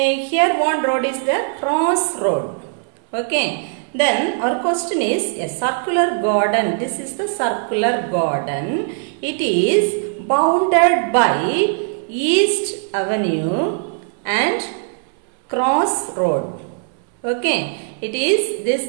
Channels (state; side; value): silent; left; 66 dB below the other